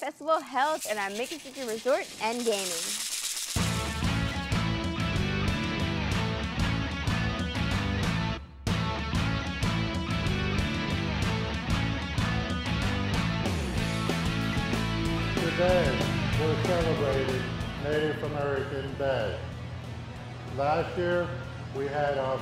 held at our Miccosukee Resort and Gaming. Today, we're celebrating Native American Day. Last year, we had our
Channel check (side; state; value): both; identical; correlation 1.00